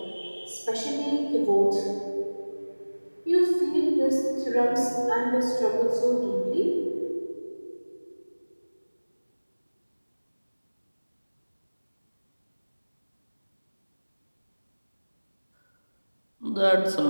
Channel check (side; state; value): both; inverted; correlation -1.00